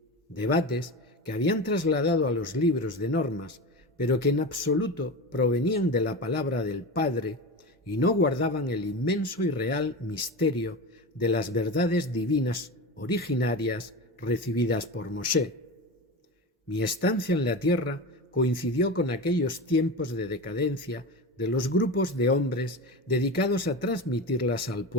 debates que habían trasladado a los libros de normas, pero que en absoluto provenían de la palabra del Padre y no guardaban el inmenso y real misterio de las verdades divinas originarias recibidas por Moshe. Mi estancia en la tierra coincidió con aquellos tiempos de decadencia de los grupos de hombres dedicados a transmitirlas al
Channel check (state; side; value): normal; both; correlation 0.25